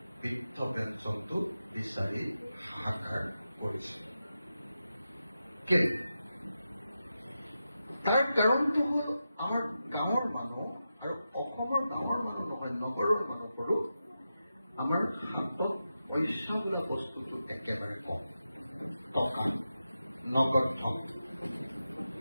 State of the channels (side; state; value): both; inverted; correlation -0.90